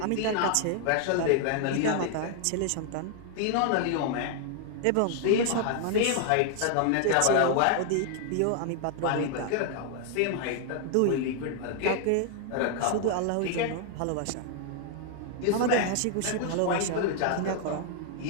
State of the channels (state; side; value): different; both; correlation 0.00